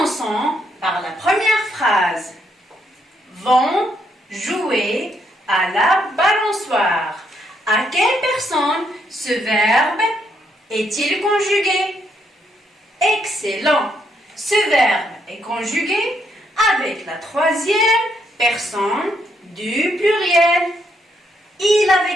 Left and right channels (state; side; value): normal; both; correlation 0.75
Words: par la première phrase. Vont jouer à la balançoire. À quelle personne ce verbe est-il conjugué? Excellent. Ce verbe est conjugué avec la troisième personne du pluriel. Il